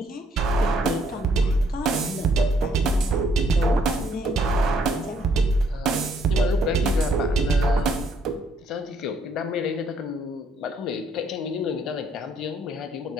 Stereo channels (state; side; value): normal; both; correlation 0.68